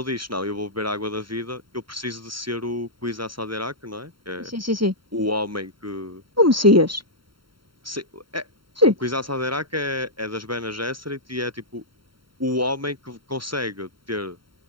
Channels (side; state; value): left; late; 0.73 ms